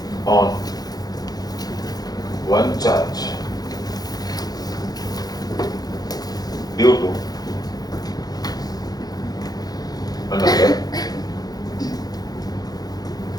on one charge due to another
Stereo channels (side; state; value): right; late; 0.19 ms